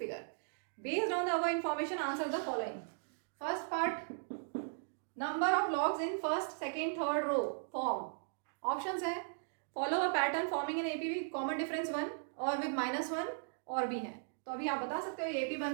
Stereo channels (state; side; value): silent; left; digital silence